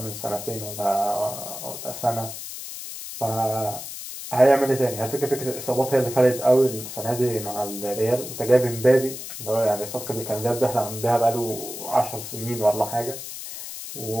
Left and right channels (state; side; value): noise; left; hiss, 9 dB below the sound